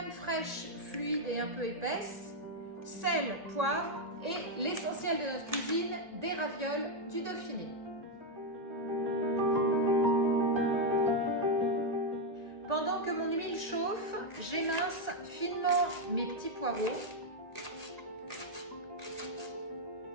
fraîche fluide et un peu épaisse, sel, poivre et l'essentiel de notre cuisine, des ravioles du Dauphiné. Pendant que mon huile chauffe, j'émince finement mes petits poireaux.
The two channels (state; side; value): late; left; 1.8 ms